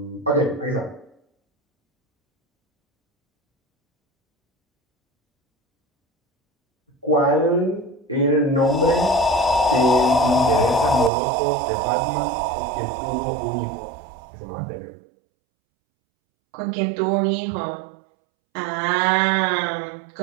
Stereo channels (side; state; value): left; drops out; at 11.1 s